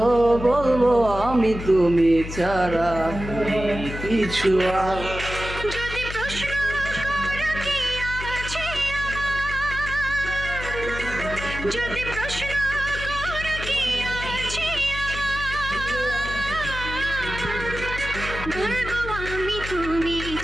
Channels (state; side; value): noise; left; hum, 8 dB below the sound